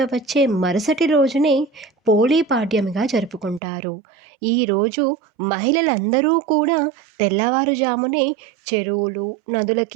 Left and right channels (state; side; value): drops out; left; at 3.6 s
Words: వచ్చే మరుసటి రోజునే పోలీ పాడ్యమిగా జరుపుకుంటారు. ఈరోజు మహిళలందరూ కూడా తెల్లవారుజామునే చెరువులు,